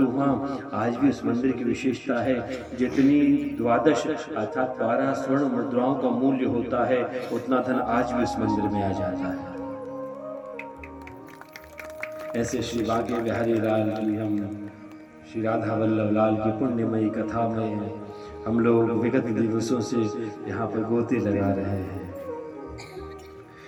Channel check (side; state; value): both; identical; correlation 1.00